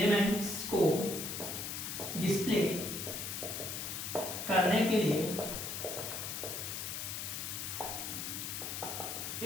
को डिस्प्ले करने के लिए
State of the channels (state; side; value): noise; left; hiss, 4 dB below the sound